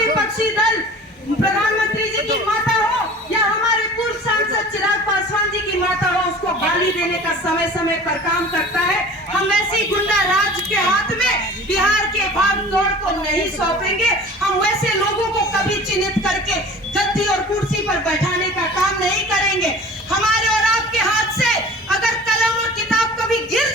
दल प्रधानमंत्री जी की माता हो या हमारे पूर्व सांसद चिराग पासवान जी की माता हो, उसको गाली देने का समय समय पर काम करता है, हम ऐसी गुंडा राज के हाथ में बिहार के भाग दौड़ को नहीं सौंपेंगे। हम वैसे लोगों को कभी चिन्हित करके गद्दी और कुर्सी पर बैठाने का काम नहीं करेंगे। हमारे और आपके हाथ से अगर कलम और किताब कभी गिर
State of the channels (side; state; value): both; normal; correlation 0.42